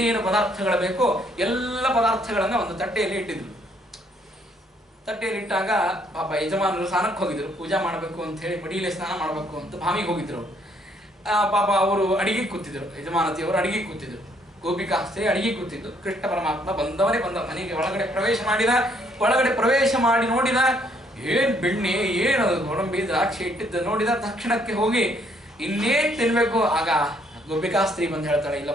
ಪದಾರ್ಥಗಳು ಬೇಕೋ ಎಲ್ಲ ಪದಾರ್ಥಗಳನ್ನ ಒಂದು ತಟ್ಟೆಯಲ್ಲಿ ಇಟ್ಟಿದ್ರು. ತಟ್ಟೆಯಲ್ಲಿ ಇಟ್ಟಾಗ ಪಾಪ ಯಜಮಾನರು ಸ್ನಾನಕ್ಕೆ ಹೋಗಿದ್ರು, ಪೂಜಾ ಮಾಡಬೇಕು ಅಂತ ಹೇಳಿ ಮಡಿಯಲ್ಲಿ ಸ್ನಾನ ಮಾಡಬೇಕು ಅಂತ ಬಾವಿಗೆ ಹೋಗಿದ್ರು. ಪಾಪ ಅವರು ಅಡಿಗೆ ಕೂತಿದ್ರು, ಯಜಮಾನತಿಯವರು ಅಡಿಗೆ ಕೂತಿದ್ರು, ಗೋಪಿಕಾ ಸ್ತ್ರೀ ಅಡಿಗೆ ಕೂತಿದ್ದು. ಕೃಷ್ಣ ಪರಮಾತ್ಮ ಬಂದವನೇ ಬಂದ, ಮನೆಗೆ ಒಳಗಡೆ ಪ್ರವೇಶ ಮಾಡಿದ. ಒಳಗಡೆ ಪ್ರವೇಶ ಮಾಡಿ ನೋಡಿದ, ಏನ್ ಬೆಣ್ಣೆ, ಏನು ಗೋಡಂಬಿ, ದ್ರಾಕ್ಷಿ ಇಟ್ಟಿದ್ದ ನೋಡಿದ ತಕ್ಷಣಕ್ಕೆ ಹೋಗಿ ಇನ್ನೇನ್ ತಿನ್ಬೇಕು. ಆಗ ಗೋಪಿಕಾ ಸ್ತ್ರೀ ಬಂದು ಹೇಳ್ತಾಳೆ,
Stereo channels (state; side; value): normal; both; correlation 0.67